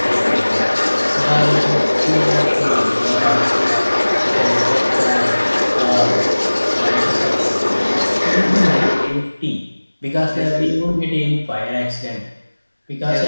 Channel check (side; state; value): both; inverted; correlation -1.00